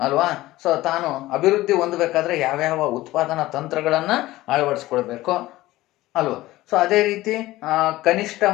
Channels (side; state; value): right; quieter; 17.2 dB